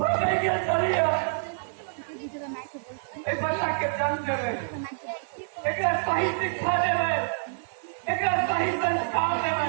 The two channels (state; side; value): silent; left; 60 dB below the other